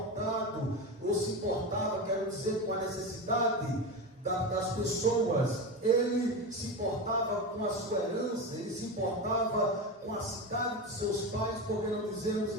ou se importava, quero dizer, com a necessidade das pessoas. Ele se importava com a sua herança, ele se importava com a cidade de seus pais, porque não dizemos,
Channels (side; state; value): both; normal; correlation 0.21